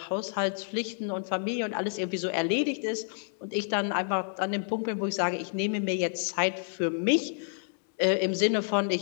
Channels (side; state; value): right; silent; 58 dB below the other